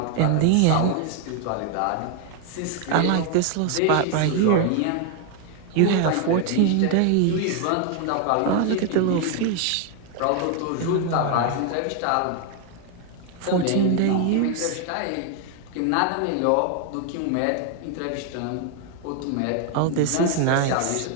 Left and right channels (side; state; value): both; different; correlation 0.00